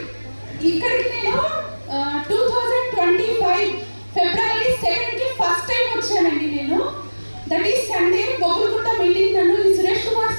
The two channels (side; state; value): both; inverted; correlation -1.00